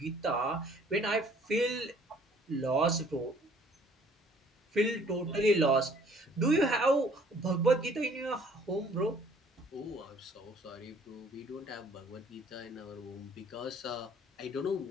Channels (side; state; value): both; normal; correlation 0.57